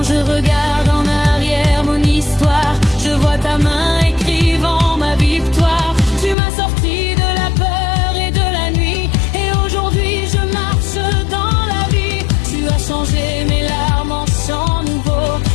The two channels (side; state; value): right; drops out; at 6.4 s